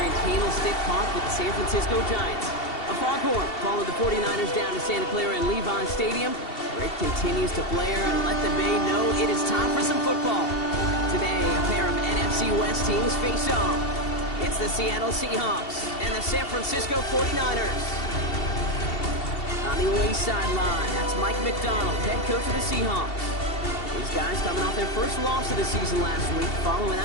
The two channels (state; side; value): late; right; 2.7 ms